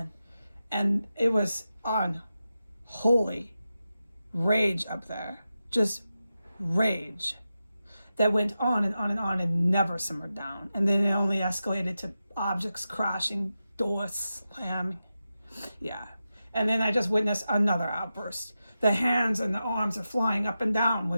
And it was unholy rage up there. Just rage that went on and on and on and never simmered down. And then it only escalated to objects crashing, doors slamming. Yeah. And then I just witnessed another outburst. The hands and the arms are flying up and down when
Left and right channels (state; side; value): inverted; both; correlation -0.91